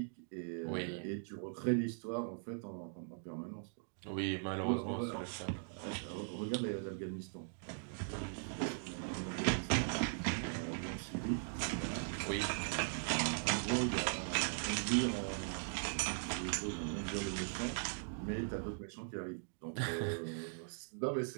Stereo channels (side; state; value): left; silent; digital silence